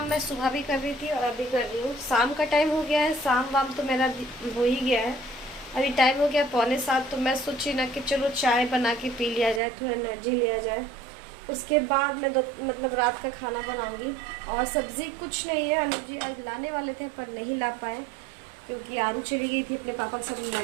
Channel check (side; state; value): left; drops out; at 9.6 s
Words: मैं सुबह भी कर रही थी और अभी कर रही हूँ। शाम का टाइम हो गया है, शाम वाम तो मेरा हो ही गया है। अभी टाइम हो गया 6:45, तो मैं सोची ना कि चलो चाय बना के पी लिया जाए, थोड़ा एनर्जी लिया जाए। उसके बाद मैं मतलब रात का खाना बनाऊँगी। और सब्ज़ी कुछ नहीं है, अनुज जी आज लाने वाले थे पर नहीं ला पाए क्योंकि आरू चली गई थी अपने पापा के साथ